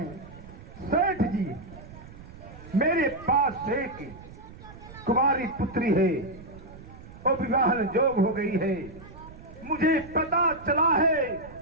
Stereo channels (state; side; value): noise; right; rumble, 17 dB below the sound